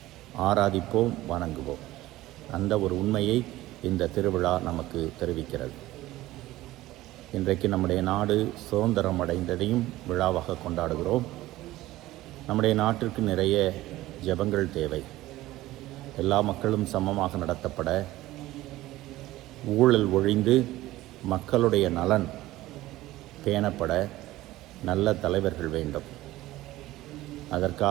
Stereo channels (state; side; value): quieter; left; 16.7 dB